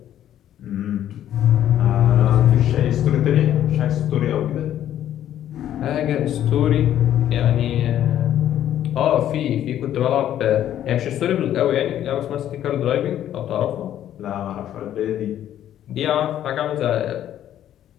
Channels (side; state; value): right; quieter; 11.3 dB